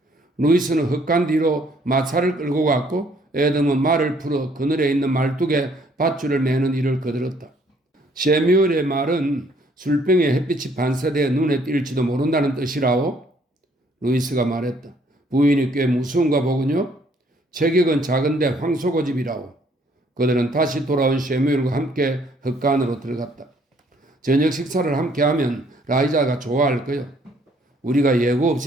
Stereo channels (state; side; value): normal; both; correlation 0.64